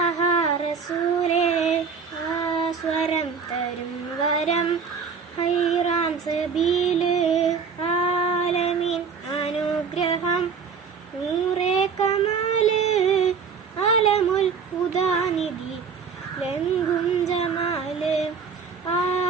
റസൂലേ, ആസ്വരം തരും വരം ഹൈറാൻ സബീല്, ആലമീൻ അനുഗ്രഹം നൂറേ കമാല്, അലമുൽ ഹുദാനിധി ലംഘും ജമാല്,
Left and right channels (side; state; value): left; quieter; 5.9 dB